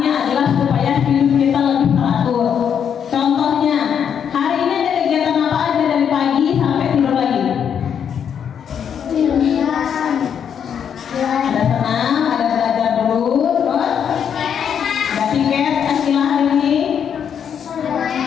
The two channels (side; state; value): right; quieter; 8.1 dB